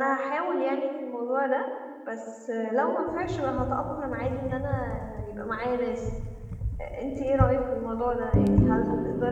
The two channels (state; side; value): identical; both; correlation 1.00